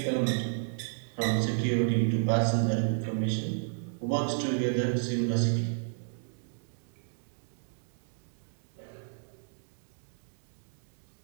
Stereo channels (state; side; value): silent; left; digital silence